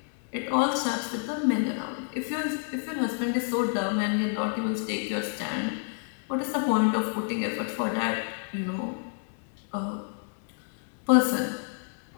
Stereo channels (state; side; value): silent; right; 59 dB below the other